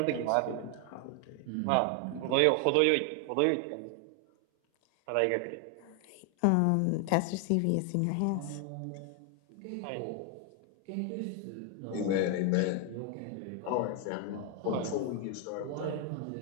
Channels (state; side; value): different; both; correlation 0.01